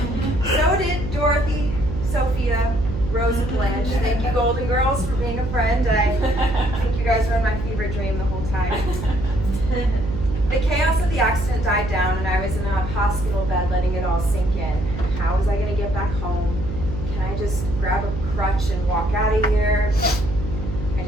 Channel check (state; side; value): noise; right; hum, 6 dB below the sound